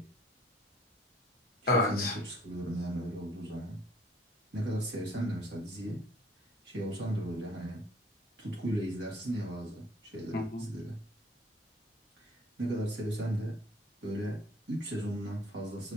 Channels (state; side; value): normal; both; correlation 0.56